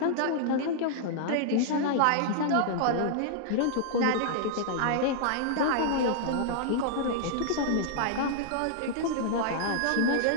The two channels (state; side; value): different; both; correlation -0.01